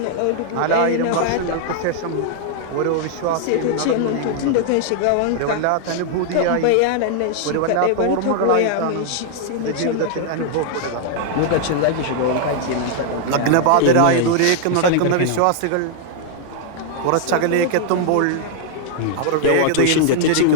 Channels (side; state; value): both; different; correlation 0.00